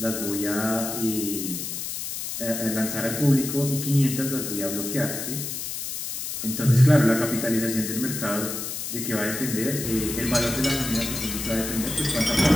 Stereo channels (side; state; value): left; noise; hiss, 5 dB below the sound